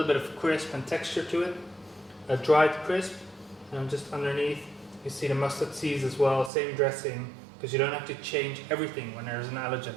bit of crisp and texture to it. A dried crisp, and just underneath you see the mustard seeds as well, same dressing, because you don't have to change everything when there's an allergen.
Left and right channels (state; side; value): drops out; left; at 6.5 s